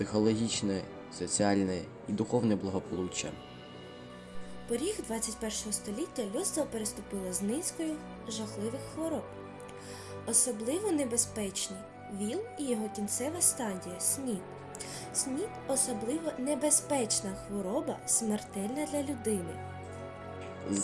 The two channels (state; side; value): identical; both; correlation 1.00